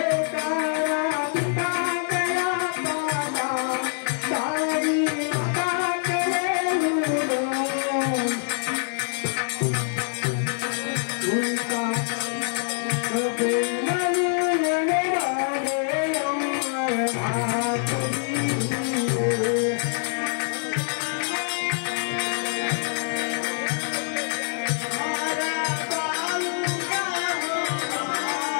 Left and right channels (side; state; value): right; silent; digital silence